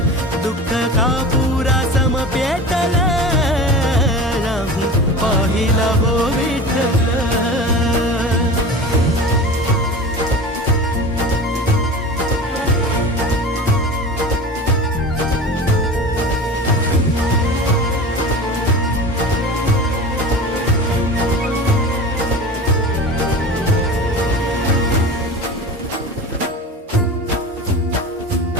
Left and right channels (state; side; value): normal; both; correlation 0.33